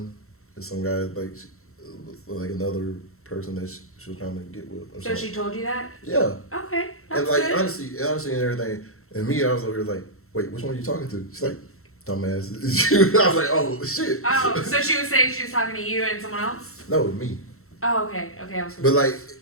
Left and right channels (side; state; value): right; late; 0.63 ms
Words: is some guy like another person that she was trying to get with. So she told you that? Yeah. Okay. That's and like good. honestly and everything, and me, I was over here like, wait, which one are you talking to? She's like, dumbass. I was like, oh shit. Oh, so she was saying she was talking to you and someone else? No, me. Oh, okay. I was. But like,